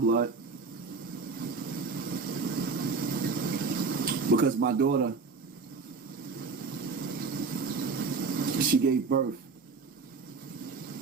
Because my daughter, she gave birth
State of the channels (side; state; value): left; quieter; 4.5 dB